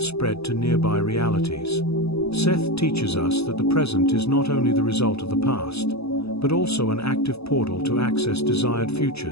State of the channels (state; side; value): late; right; 0.78 ms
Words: to nearby realities. Seth teaches us that the present is not only the result of the past, but also an active portal to access desired